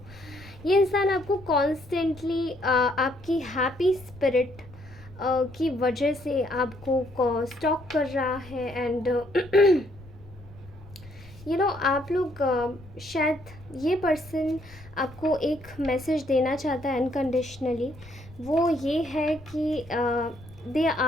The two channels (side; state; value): left; noise; rumble, 21 dB below the sound